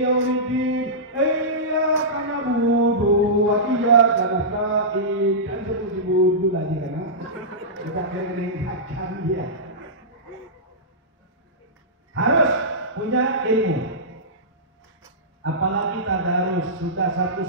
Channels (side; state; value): both; normal; correlation -0.16